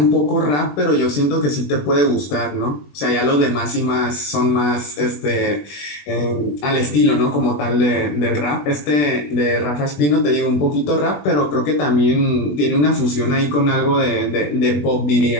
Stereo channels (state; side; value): late; right; 20 ms